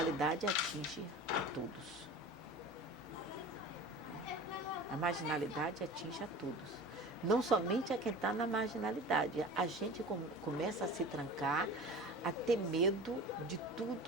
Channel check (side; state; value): both; normal; correlation 0.36